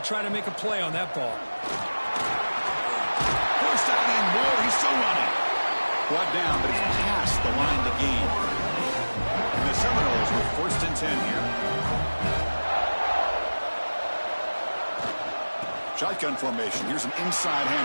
try to make a play on that ball. First down and more. He's still running. Brought down, but it's past the line to gain. And the Seminoles with 1st and 10 here. Shotgun formation. Here's an inside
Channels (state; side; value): inverted; both; correlation -1.00